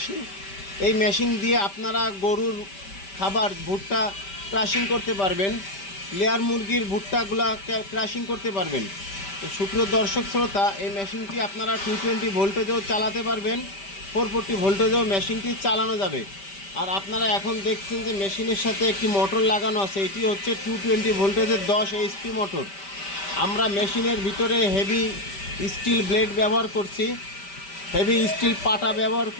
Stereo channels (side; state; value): right; late; 5.1 ms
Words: এই মেশিন দিয়ে আপনারা গরুর খাবার ভুট্টা ক্রাশিং করতে পারবেন, লেয়ার মুরগির ভুট্টাগুলা ক্রাশিং করতে পারবেন। তো সুপ্রিয় দর্শক শ্রোতা, এই মেশিনটি আপনারা 220 ভোল্টেজেও চালাতে পারবেন, 440 ভোল্টেজেও মেশিনটি চালানো যাবে। আর আপনারা এখন দেখছেন যে মেশিনের সাথে একটি মোটর লাগানো আছে, এটি হচ্ছে 220 ভোল্টেজের 10 এইচপি মোটর। আমরা মেশিনের ভিতরে হেভি স্টিল ব্লেড ব্যবহার করছি, হেভি স্টিল পাটা ব্যবহার